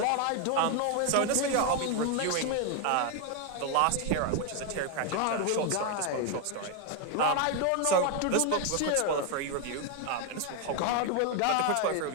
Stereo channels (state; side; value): different; both; correlation 0.01